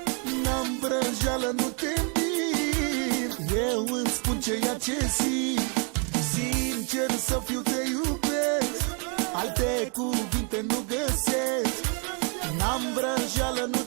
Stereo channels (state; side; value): quieter; left; 37.4 dB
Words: N-am vrăjeală, nu te mint, eu îți spun ceea ce simt. Sincer să fiu, te iubesc, alte cuvinte nu găsesc. N-am vrăjeală, nu